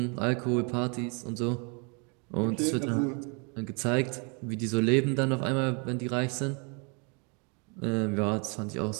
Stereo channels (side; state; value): left; quieter; 34.7 dB